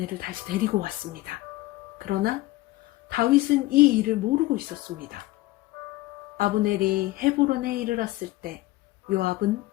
다시 데리고 왔습니다. 그러나 다윗은 이 일을 모르고 있었습니다. 아브넬이 헤브론에 이르렀을 때 요압은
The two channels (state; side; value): quieter; right; 18.5 dB